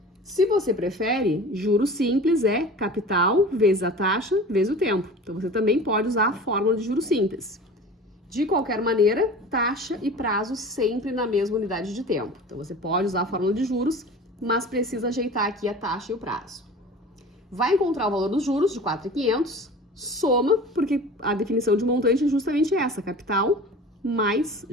Se você prefere, juros simples é capital vezes a taxa vezes o tempo. Então, você também pode usar a fórmula de juros simples. De qualquer maneira, taxa e prazo sempre na mesma unidade de tempo. Então, você pode usar a fórmula de juros, mas precisa ajeitar aqui a taxa e o prazo. Vai encontrar o valor dos juros de 4.500, soma, porque a definição de montante é justamente essa, capital mais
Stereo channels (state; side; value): normal; both; correlation 0.38